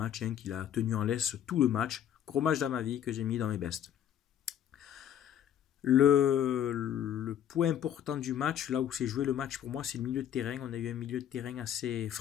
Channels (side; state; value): right; quieter; 10.1 dB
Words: qui l'a tenu en laisse tout le match. Gros match d'Amavi que j'ai mis dans mes bestes. Le point important du match, là où s'est joué le match pour moi, c'est le milieu de terrain. On a eu un milieu de terrain assez